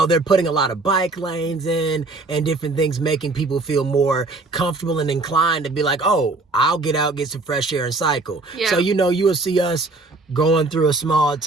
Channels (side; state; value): left; quieter; 3.4 dB